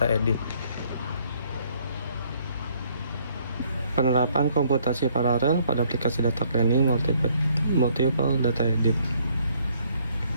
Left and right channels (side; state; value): both; inverted; correlation -0.64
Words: edit. Penerapan komputasi paralel pada aplikasi data cleaning multiple data edit.